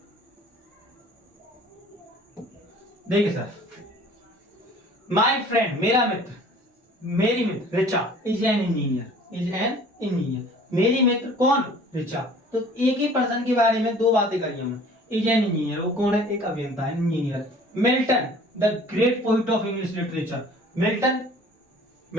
देखिए सर, माय फ्रेंड मेरा मित्र, मेरी मित्र Richa is an engineer, is an engineer. मेरी मित्र कौन? रिचा। तो एक ही पर्सन के बारे में दो बातें करी हमने। इज एन इंजीनियर, वो कौन है? एक अभियंता है, engineer. Milton the great poet of English literature. Milton,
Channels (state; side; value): normal; both; correlation 0.49